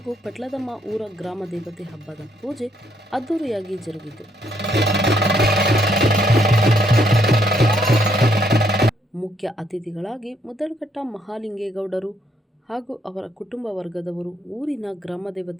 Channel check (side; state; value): both; normal; correlation 0.71